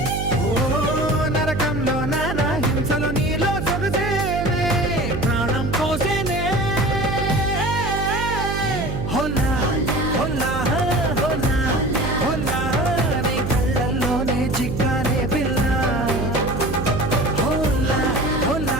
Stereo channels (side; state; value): right; noise; hum, 3 dB below the sound